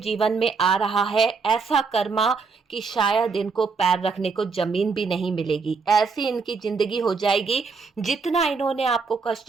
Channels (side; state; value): left; quieter; 4.8 dB